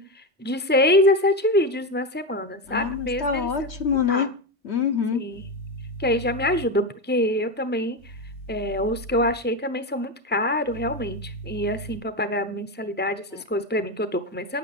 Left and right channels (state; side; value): normal; both; correlation 0.15